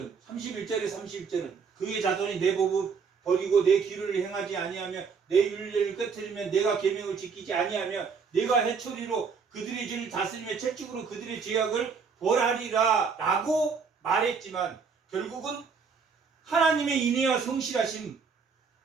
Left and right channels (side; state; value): left; quieter; 5.6 dB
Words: 그의 자손이 내 법을 버리고 내 길을 행하지 아니하며 내 율례를 깨뜨리면 내가 계명을 지키지 아니하며 내가 해초리로 그들의 죄를 다스리며 채찍으로 그들의 죄악을 벌하리라 라고 말했지만 결국은 하나님의 인애와 성실하심으로